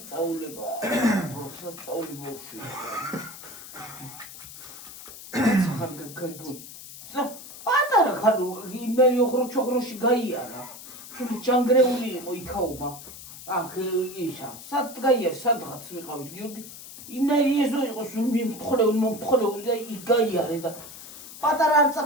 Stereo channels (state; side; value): noise; left; hiss, 14 dB below the sound